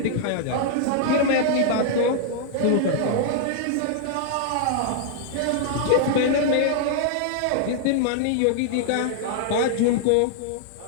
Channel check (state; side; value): different; both; correlation -0.01